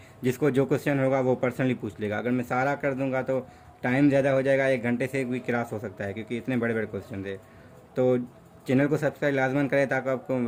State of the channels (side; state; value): both; identical; correlation 1.00